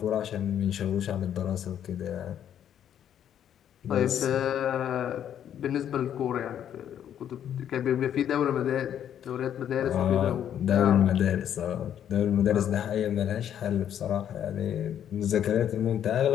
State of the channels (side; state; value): right; quieter; 9.8 dB